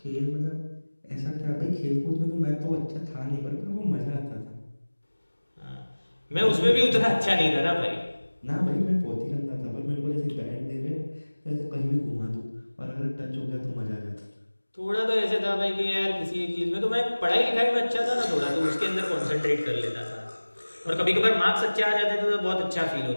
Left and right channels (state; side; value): inverted; both; correlation -1.00